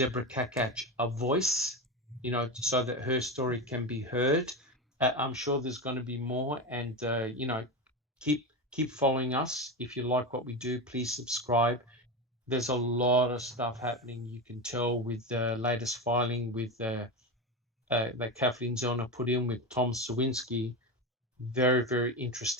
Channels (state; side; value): normal; both; correlation 0.18